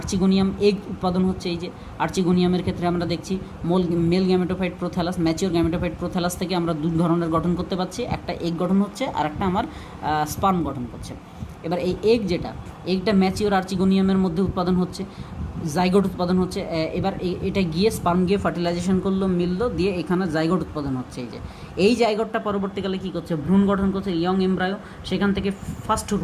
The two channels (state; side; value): identical; both; correlation 1.00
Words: এগ উৎপাদন হচ্ছে। এই যে আর্চিগোনিয়ামের ক্ষেত্রে আমরা দেখছি male gametophyte prothallus, mature gametophyte prothallus থেকে আমরা দু ধরনের গঠন করতে পারছি, একটা এগ গঠন হচ্ছে আর একটা আমার স্পার্ম গঠন করছে। এবার এই এগটা ম্যাচিওর আর্চিগোনিয়ামের মধ্যে উৎপাদন হচ্ছে, জাইগোট উৎপাদন হচ্ছে। এবার এটা গিয়ে স্পার্ম গিয়ে ফার্টিলাইজেশন করলো, মিললো, দিয়ে এখানে জাইগোট উৎপাদন হচ্ছে। এই জাইগোটটা পরবর্তীকালে কী করছে? ভ্রূণ গঠন করছে, ইয়ং এমব্রায়ো। সেখান থেকে ফার্স্ট